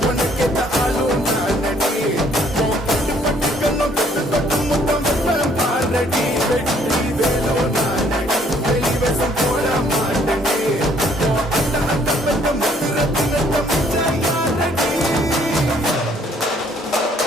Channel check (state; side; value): normal; both; correlation 0.63